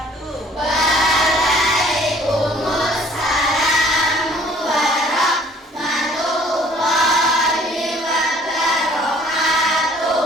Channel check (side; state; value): both; normal; correlation 0.56